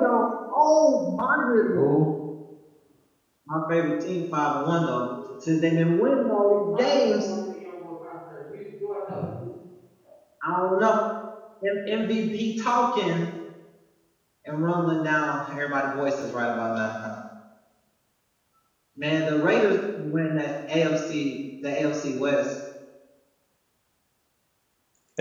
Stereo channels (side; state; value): both; identical; correlation 1.00